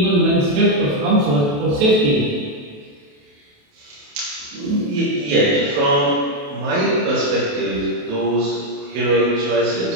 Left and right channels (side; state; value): left; late; 28 ms